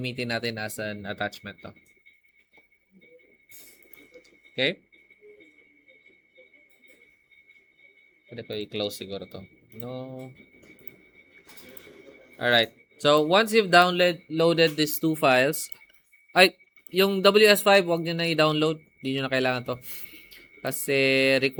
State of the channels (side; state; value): both; identical; correlation 1.00